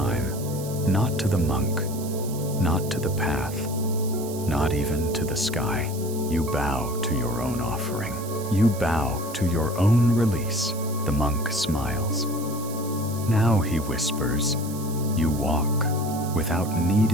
not to the monk, not to the path, not even to the sky. You bow to your own offering. You bow to your own release. The monk smiles. Now, he whispers, you walk without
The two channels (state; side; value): noise; right; hiss, 14 dB below the sound